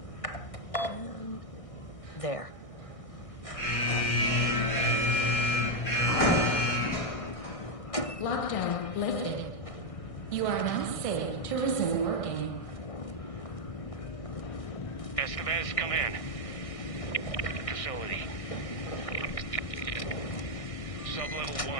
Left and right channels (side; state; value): right; late; 1.6 ms